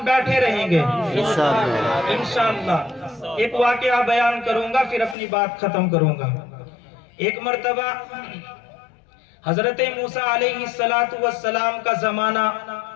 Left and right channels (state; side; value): drops out; right; at 5.2 s